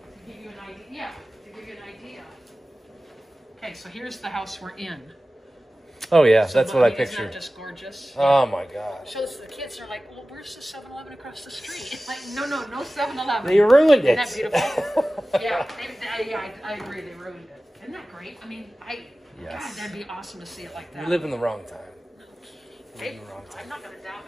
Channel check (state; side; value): normal; both; correlation 0.96